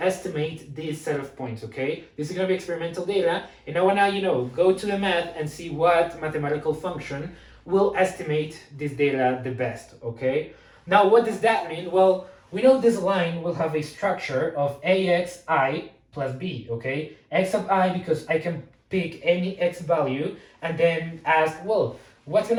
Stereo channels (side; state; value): both; identical; correlation 1.00